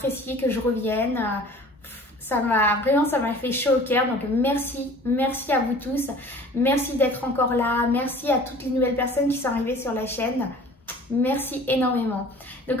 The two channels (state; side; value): normal; both; correlation 0.46